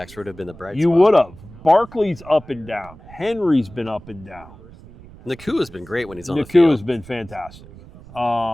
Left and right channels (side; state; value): right; noise; rumble, 20 dB below the sound